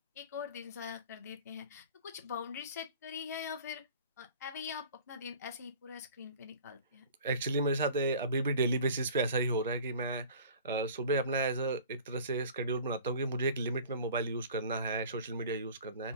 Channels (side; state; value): both; inverted; correlation -0.44